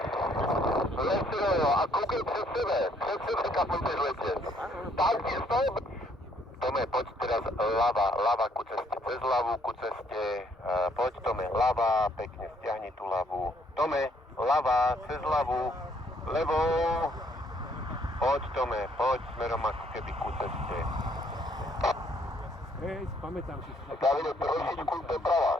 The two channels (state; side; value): normal; both; correlation 0.66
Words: Lehce doleva a koukej před sebe. Před sebe kapujte zletě. Tak, stop. Tome, poď teraz ľava ku ceste. Cez ľavu ku ceste. Poď, Tome, ľava, pekne stiahni tú ľavu. Tome, ľava, cez ľavu. Levou. Poď, Tome, poď smerom ako keby ku ceste. Hej, pamätám si. Davide, trošičku doprava.